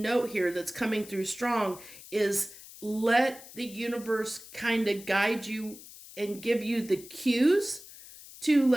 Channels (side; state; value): left; noise; hiss, 17 dB below the sound